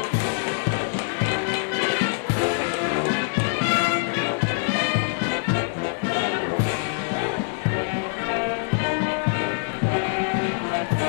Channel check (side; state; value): right; silent; digital silence